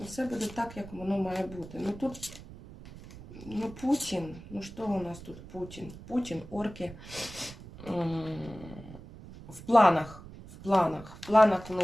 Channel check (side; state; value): right; noise; rumble, 16 dB below the sound